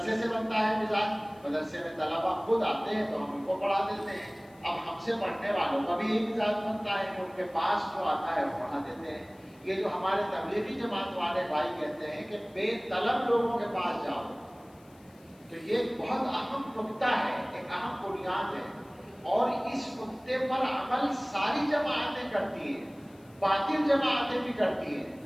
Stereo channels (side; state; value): left; noise; hiss, 30 dB below the sound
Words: سے بنتا ہے مزاج. مدرسے میں طلبہ خود آتے ہیں تو ہم ان کو پڑھا دیتے ہیں. اب ہم سے پڑھنے والوں کا بھی یہی مزاج بنتا ہے کہ ان کے پاس جو آتا ہے وہ پڑھا دیتے ہیں. یہ جو ہمارے تبلیغی جماعت والے بھائی کہتے ہیں کہ بے طلب لوگوں کے پاس جاؤ، تو یہ ایک بہت اہم نکتہ ہے، ایک اہم بنیاد ہے. اور اس نکتے پر عمل ساری جماعتیں کرتی ہیں، باطل جماعتیں بھی کرتی ہیں.